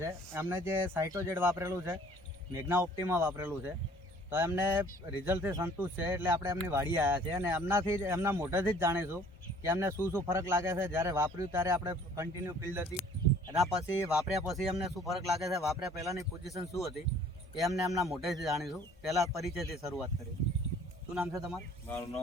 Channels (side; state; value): both; normal; correlation 0.54